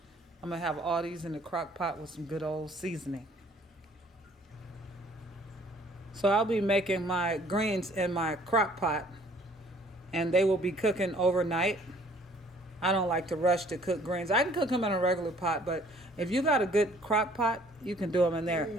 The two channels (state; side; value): normal; both; correlation 0.58